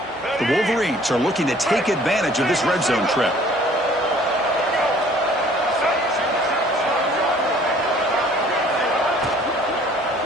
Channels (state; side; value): normal; both; correlation 0.55